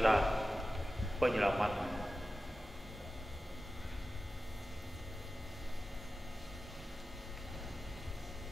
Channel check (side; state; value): both; normal; correlation 0.94